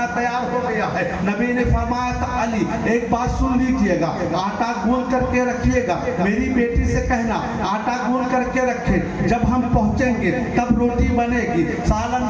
تیار ہو گیا ہے. نبی نے فرمایا تھا علی ایک بات سن لیجئے گا, آٹا گون کر کے رکھیے گا, میری بیٹی سے کہنا آٹا گون کر کے رکھے, جب ہم پہنچیں گے تب روٹی بنے گی, سالن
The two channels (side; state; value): both; identical; correlation 1.00